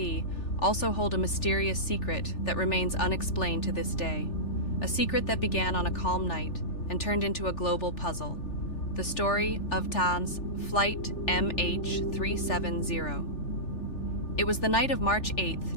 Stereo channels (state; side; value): late; right; 3.4 ms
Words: also hold a mysterious secret that remains unexplained to this day. A secret that began on a calm night and turned into a global puzzle. The story of Tan's Flight MH370. It was the night of March 8,